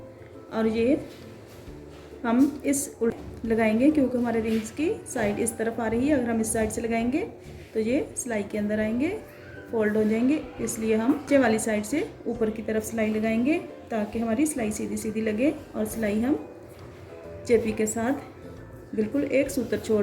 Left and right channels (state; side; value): identical; both; correlation 1.00